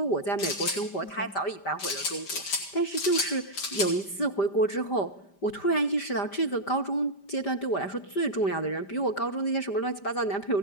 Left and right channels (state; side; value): late; right; 5.1 ms